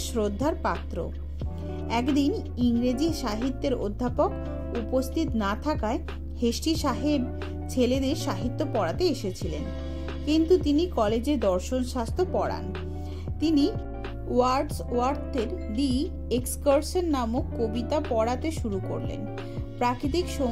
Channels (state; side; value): identical; both; correlation 1.00